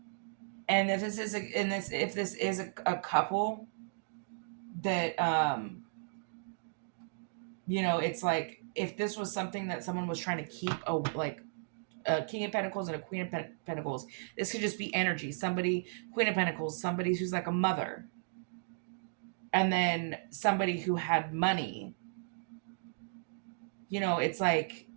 And if this is a couple that, it's like, if this was something that someone was trying to keep a King of Pentacles and a Queen of Pentacles. This could just be energy. Somebody, Queen of Pentacles, somebody who's like a mother. And then somebody who had money. It's like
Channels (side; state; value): left; silent; digital silence